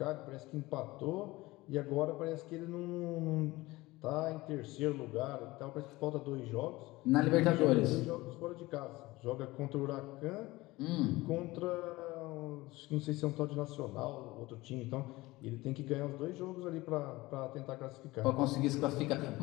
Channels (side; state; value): right; quieter; 20.0 dB